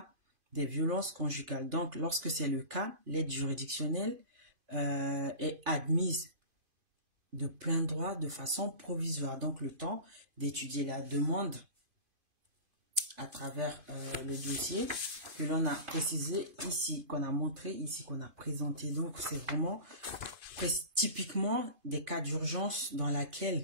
des violences conjugales. Donc, lorsque c'est le cas, l'aide juridictionnelle est admise de plein droit de façon provisoire. Donc, le temps d'étudier la demande à travers le dossier que l'on a précisé ici, qu'on a montré ici, qu'on a présenté. Donc, c'est vraiment typiquement des cas d'urgence dans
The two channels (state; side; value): late; left; 2.5 ms